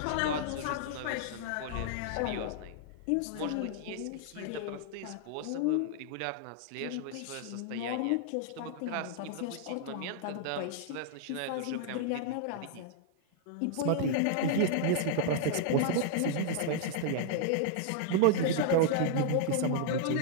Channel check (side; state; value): both; different; correlation -0.01